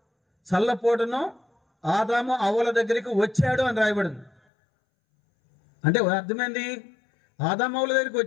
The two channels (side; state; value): right; drops out; at 4.3 s